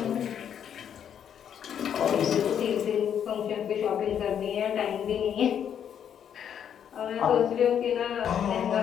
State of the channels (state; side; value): quieter; right; 8.8 dB